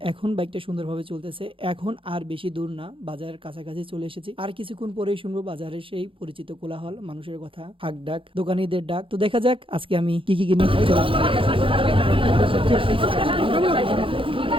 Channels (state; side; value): late; left; 0.25 ms